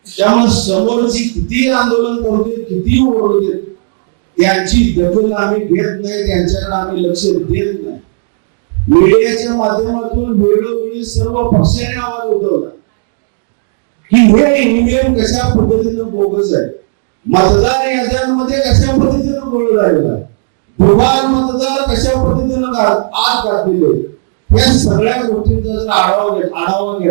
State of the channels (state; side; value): silent; left; digital silence